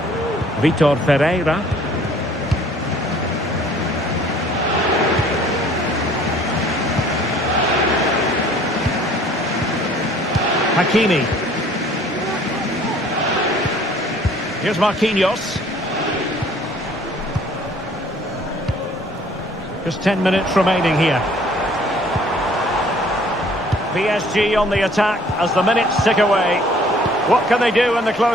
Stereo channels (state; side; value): normal; both; correlation 0.55